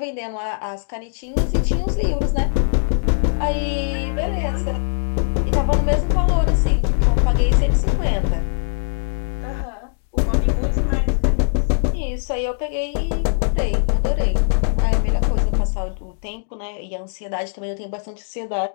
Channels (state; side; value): silent; right; digital silence